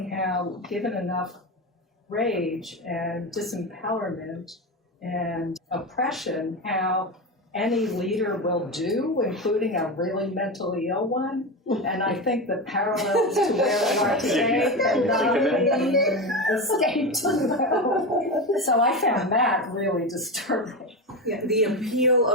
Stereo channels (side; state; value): both; normal; correlation 0.19